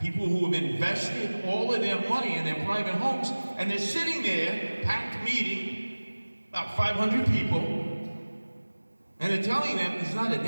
who have invested all of their money in their private homes, and they're sitting there, packed meeting, about 500 people, and they're telling them there's not a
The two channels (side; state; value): both; inverted; correlation -1.00